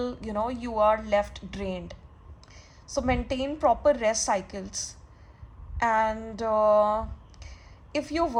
you are left drained. So maintain proper rest cycles. And if you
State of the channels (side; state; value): both; identical; correlation 1.00